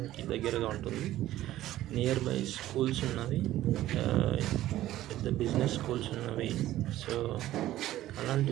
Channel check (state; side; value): quieter; left; 14.3 dB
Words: దగ్గరగా ఉంటుంది. నియర్ బై స్కూల్స్ ఉన్నవి, పెద్ద బిజినెస్ స్కూల్స్ ఉన్నవి. సో అలాంటి